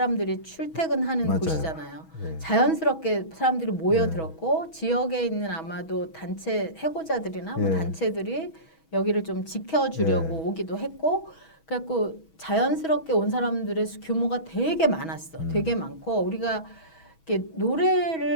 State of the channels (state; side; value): late; right; 6.2 ms